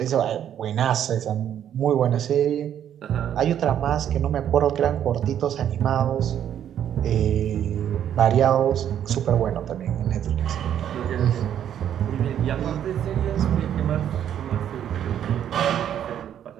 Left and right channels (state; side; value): quieter; left; 10.0 dB